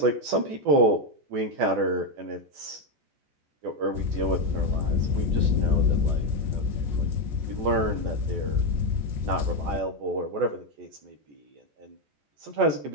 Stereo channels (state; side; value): late; left; 14 ms